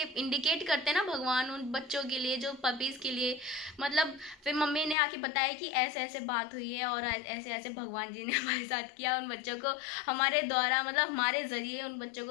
करते हैं ना भगवान उन बच्चों के लिए, जो पपीज़ के लिए। मतलब फिर मम्मी ने आके बताया कि ऐसे ऐसे बात हुई है और ऐसे ऐसे भगवान जी ने हमारे साथ किया, उन बच्चों को हमारे द्वारा मतलब हमारे ज़रिए उन बच्चों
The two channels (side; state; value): right; drops out; at 5.0 s